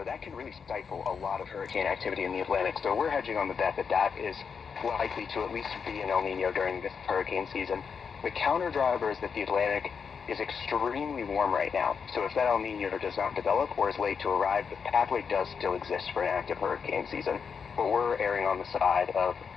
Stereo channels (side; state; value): right; quieter; 6.2 dB